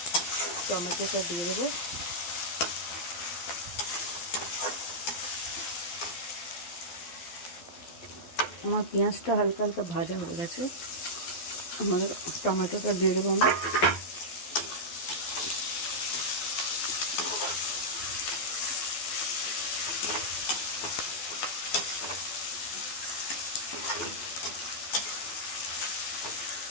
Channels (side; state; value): right; late; 12 ms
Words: টমেটোটা দিয়ে দেবো। আমার পেঁয়াজটা হালকা হালকা ভাজা হয়ে গেছে, আমাদের টমেটোটা দিয়ে দেবো আমি।